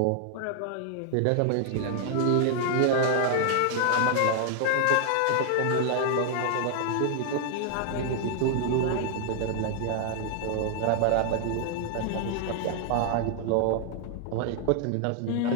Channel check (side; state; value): both; different; correlation 0.00